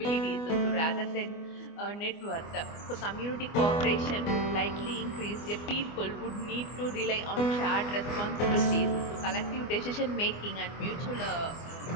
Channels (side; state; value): right; late; 24 ms